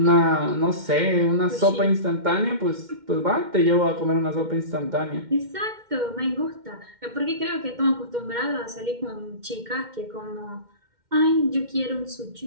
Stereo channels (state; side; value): late; left; 2.1 ms